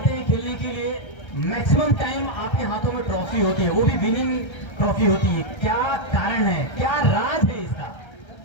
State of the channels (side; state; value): right; late; 1.3 ms